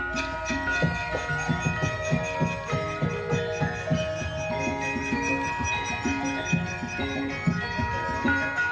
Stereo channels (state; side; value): identical; both; correlation 1.00